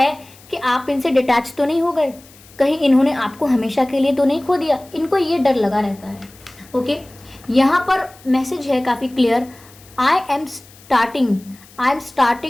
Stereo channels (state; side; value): noise; left; hiss, 24 dB below the sound